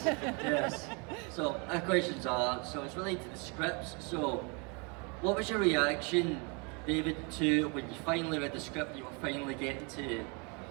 yes. So, my questions are, so it's related to the scripts. So, what was your reaction, David, to when you finally read the script, you were finally getting to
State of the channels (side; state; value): left; quieter; 32.8 dB